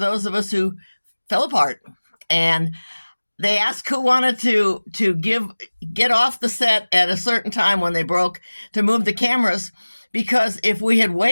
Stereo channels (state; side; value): inverted; both; correlation -1.00